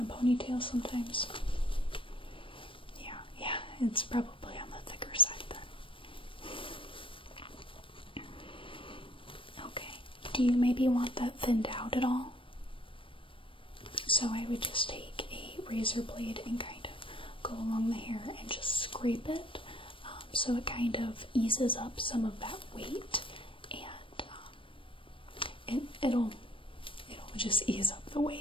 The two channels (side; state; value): right; late; 0.25 ms